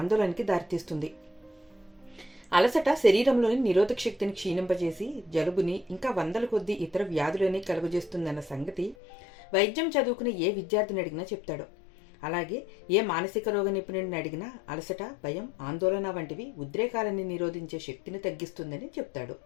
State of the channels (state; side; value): drops out; right; at 9.0 s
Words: దారితీస్తుంది. అలసట శరీరంలోని నిరోధక శక్తిని క్షీణింపజేసి జలుబుని ఇంకా వందల కొద్దీ ఇతర వ్యాధులని కలుగజేస్తుందన్న సంగతి వైద్యం చదువుకునే ఏ విద్యార్థిని అడిగినా చెప్తాడు. అలాగే ఏ మానసిక రోగ నిపుణుడిని అడిగినా అలసట, భయం, ఆందోళన వంటివి ఉద్రేకాలని నిరోధించే శక్తిని తగ్గిస్తుందని చెప్తాడు.